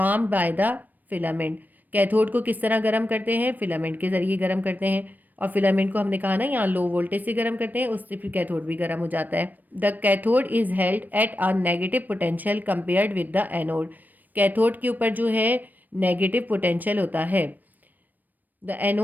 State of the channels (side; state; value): left; late; 0.087 ms